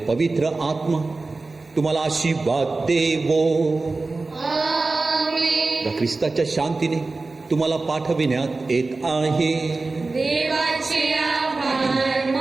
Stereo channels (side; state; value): left; quieter; 3.6 dB